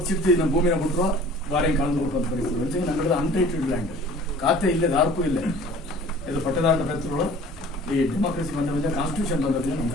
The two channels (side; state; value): both; normal; correlation 0.47